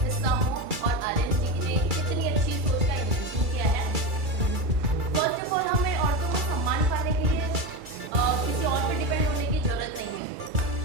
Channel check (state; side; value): late; left; 2.3 ms